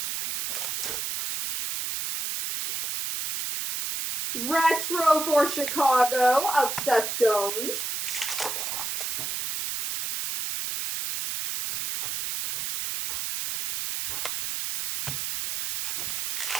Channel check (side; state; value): right; noise; hiss, 2 dB below the sound